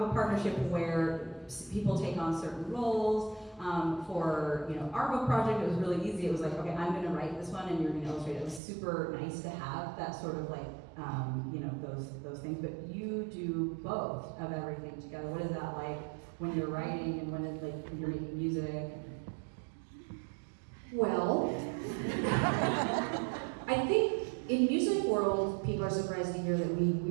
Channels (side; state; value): left; drops out; at 8.6 s